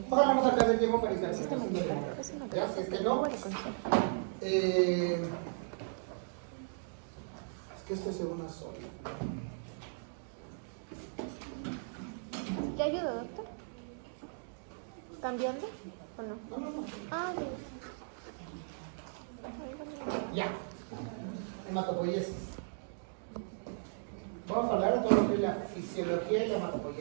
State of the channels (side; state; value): left; silent; digital silence